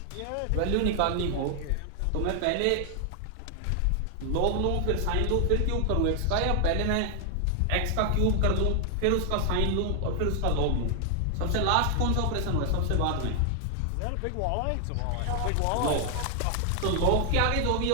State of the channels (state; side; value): different; both; correlation 0.00